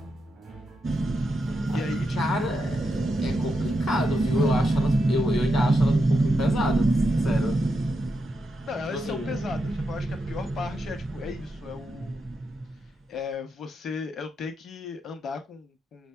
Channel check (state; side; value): normal; both; correlation 0.85